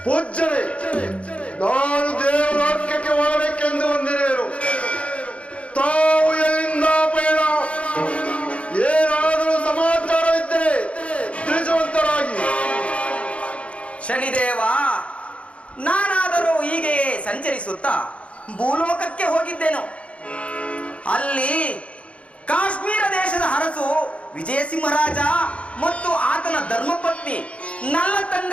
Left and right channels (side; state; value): right; late; 0.062 ms